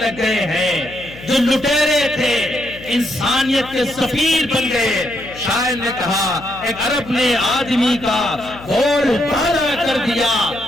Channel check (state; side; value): noise; left; hum, 17 dB below the sound